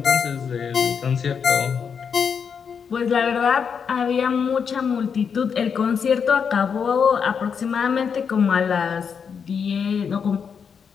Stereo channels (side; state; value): right; quieter; 6.6 dB